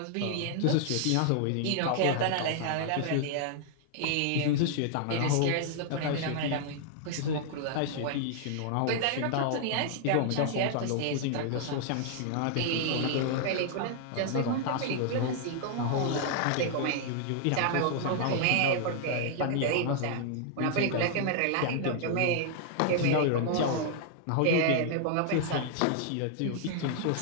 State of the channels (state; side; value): different; both; correlation -0.01